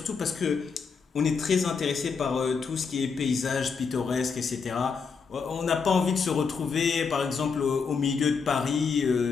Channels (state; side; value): quieter; right; 5.5 dB